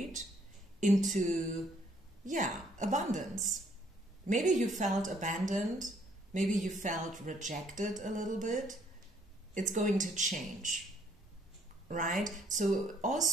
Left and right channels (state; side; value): normal; both; correlation 0.66